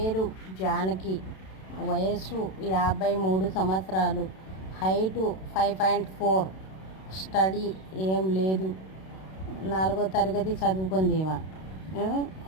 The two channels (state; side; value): late; right; 32 ms